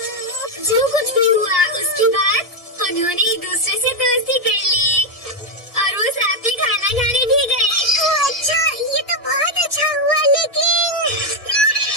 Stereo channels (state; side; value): normal; both; correlation 0.04